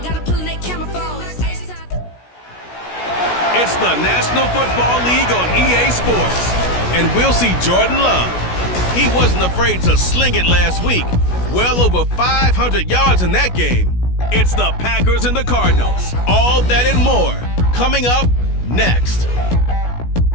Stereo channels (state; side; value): late; right; 16 ms